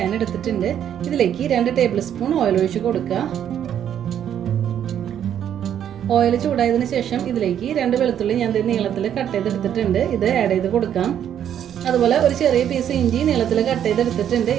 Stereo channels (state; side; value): quieter; left; 9.7 dB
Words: എടുത്തിട്ടുണ്ട്. ഇതിലേക്ക് 2 ടേബിൾ സ്പൂൺ ഓയിൽ ഒഴിച്ച് കൊടുക്കുക. ഓയിൽ ചൂടായതിനു ശേഷം ഇതിലേക്ക് 2 വെളുത്തുള്ളി ഞാൻ നീളത്തിൽ കട്ട് ചെയ്തെടുത്തിട്ടുണ്ട്. ഇത് ആഡ് ചെയ്ത് കൊടുക്കാം. അതുപോലെ ഒരു ചെറിയ പീസ് ഇഞ്ചി നീളത്തിൽ കട്ട് ചെയ്തെടുത്തിട്ടുണ്ട്.